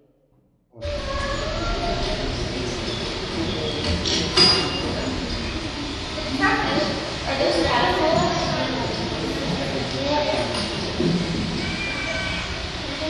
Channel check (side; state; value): both; identical; correlation 1.00